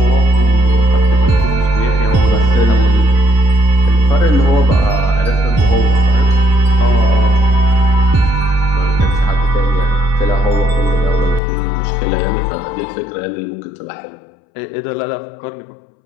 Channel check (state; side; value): drops out; right; at 11.4 s